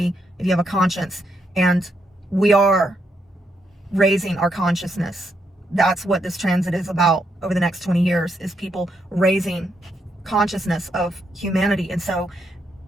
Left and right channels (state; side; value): normal; both; correlation 0.78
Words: if you have a conscience. And we are raising our consciousness. That's what this transit is about over the next 20 years, is people raising consciousness of humanity. And so